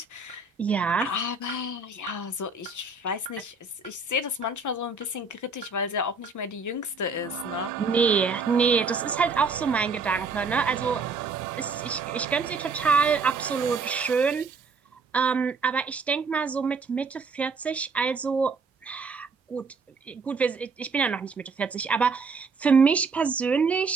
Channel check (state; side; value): quieter; left; 4.3 dB